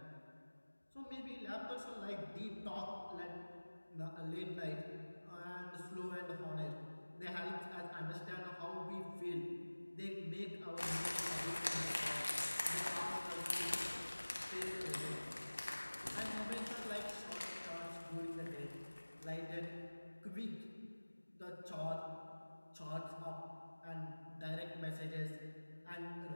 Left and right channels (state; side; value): inverted; both; correlation -1.00